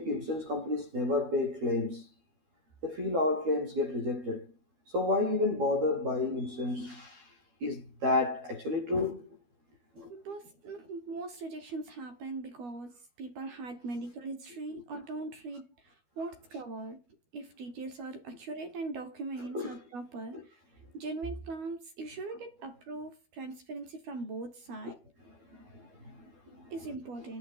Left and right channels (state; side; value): late; left; 12 ms